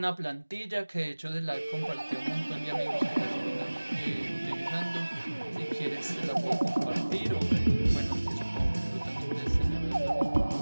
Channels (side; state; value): both; inverted; correlation -1.00